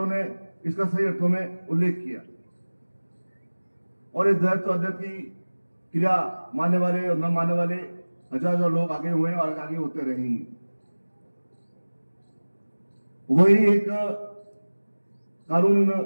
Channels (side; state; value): both; inverted; correlation -1.00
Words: ने इसका सही अर्थों में उल्लेख किया और इस द्वैत अद्वैत की क्रिया मानने वाले और न मानने वाले हजार लोग आगे हुए और आगे होते रहेंगे। वही एक कानून